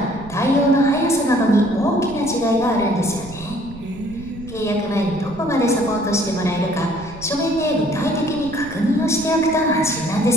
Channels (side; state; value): right; noise; rumble, 16 dB below the sound